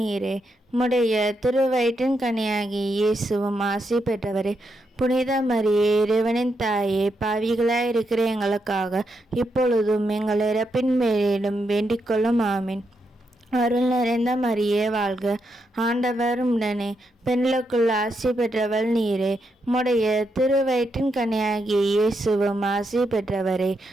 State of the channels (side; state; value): both; normal; correlation 0.82